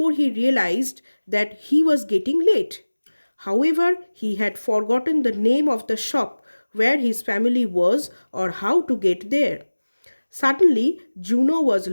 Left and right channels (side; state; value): both; inverted; correlation -1.00